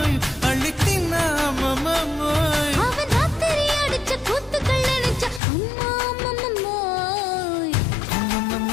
அள்ளி தின்னா அம்மம்மோய் அவன் ராத்திரி அடிச்ச கூத்துக்கள் நினைச்ச அம்மா அம்மம்மோய்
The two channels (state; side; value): drops out; right; at 5.4 s